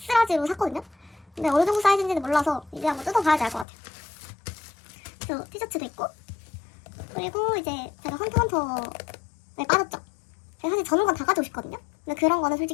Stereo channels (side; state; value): right; drops out; at 3.7 s